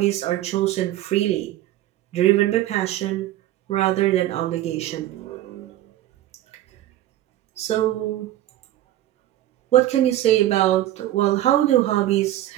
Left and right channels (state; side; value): quieter; left; 14.2 dB